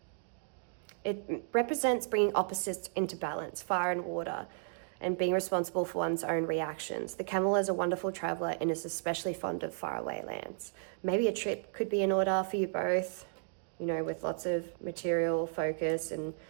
It represents bringing opposites into balance, fire and water, and being responsible for one's own reactions. The camel is a wonderful traveler and is especially fond of faraway lands. Maybe a trip could be in order for you both, you know, with lots of material focus and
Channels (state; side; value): silent; left; digital silence